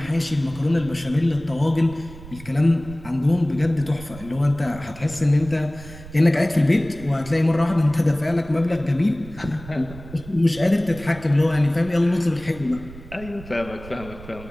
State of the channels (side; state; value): right; noise; rumble, 16 dB below the sound